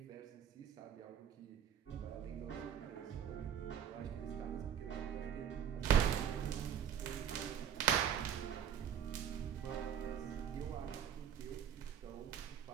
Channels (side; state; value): left; quieter; 8.8 dB